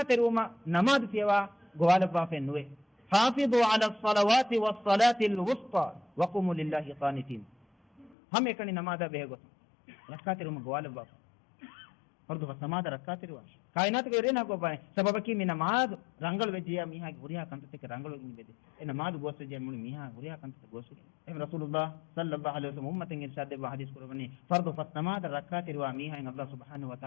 teruma namaz fiwa gwalaba fe nuwe hafizu ala as-salawati was-salati al-wusta wa qumu lillahi qanitin हम एकनी नमाज बेगो रखा तेरे में गोवाल बाप fardu fasamada rakatiri wash kainat ge rena go bai sababaki mi namaz rangal vejiya miha guriya kantete ke rangal gi bede e namaz gosse je mul miha guriya kantete gosse em rasulullah sallallahu alaihi wasallam ummatin irshad de hadis kurani fardu fasamada rakatiri wa miha in allah subhanahu wa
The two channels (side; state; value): right; drops out; at 8.2 s